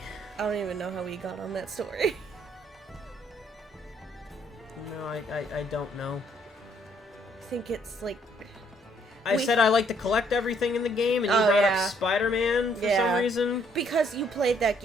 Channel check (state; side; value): normal; both; correlation 0.67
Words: I don't even know how we got on that story. No, I don't know. I think it's, like... I said I like to collect everything in the game, and you brought up Spider-Man for some reason. Because you played that